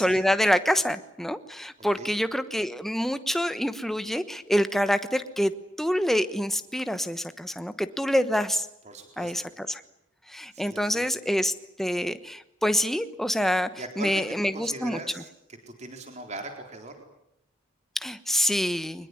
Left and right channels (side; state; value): both; normal; correlation 0.88